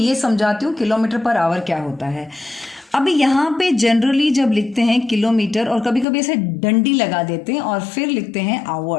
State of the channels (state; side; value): drops out; right; at 6.1 s